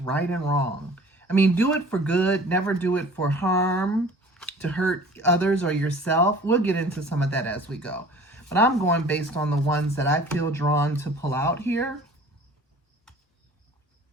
and wrong. I mean, do it for good. Never do it for harm, to hurt others or yourself. We'll get into some of that as we go. But I'm going based on the ones that I feel drawn to pull out here.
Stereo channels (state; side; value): normal; both; correlation 0.46